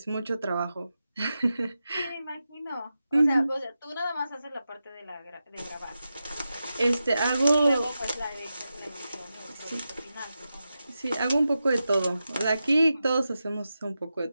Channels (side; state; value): both; inverted; correlation -0.91